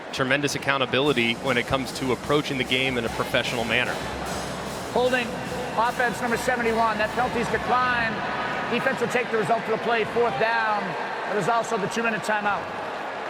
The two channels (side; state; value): both; identical; correlation 1.00